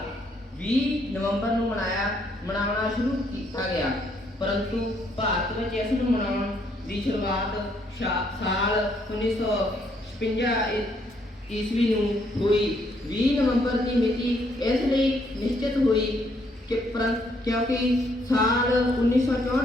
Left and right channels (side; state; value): both; normal; correlation 0.70